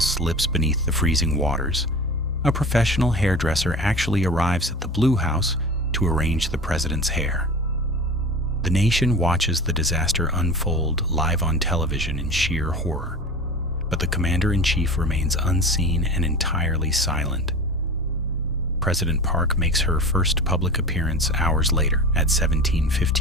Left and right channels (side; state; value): both; normal; correlation 0.33